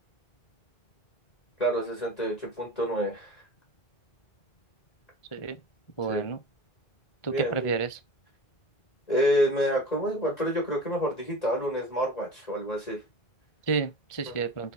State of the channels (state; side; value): late; right; 1.9 ms